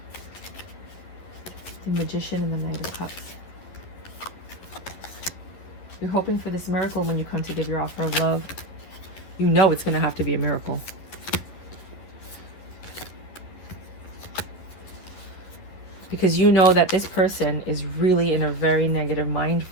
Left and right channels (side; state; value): right; late; 11 ms